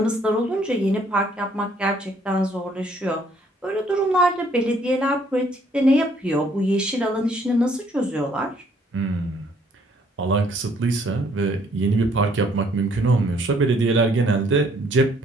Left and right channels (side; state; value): both; normal; correlation 0.64